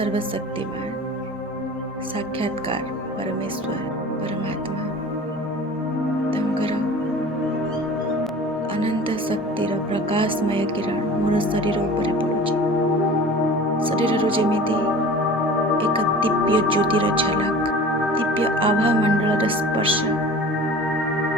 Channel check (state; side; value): normal; both; correlation 0.40